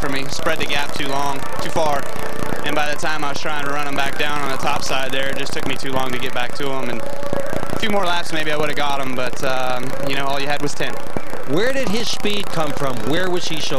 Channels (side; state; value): both; identical; correlation 1.00